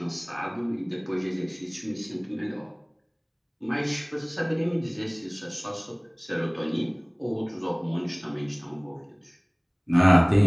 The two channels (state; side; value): identical; both; correlation 1.00